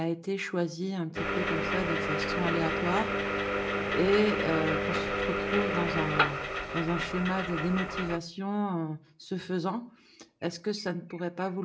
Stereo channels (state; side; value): identical; both; correlation 1.00